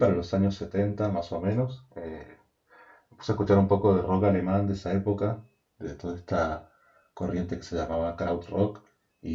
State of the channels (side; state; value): both; identical; correlation 1.00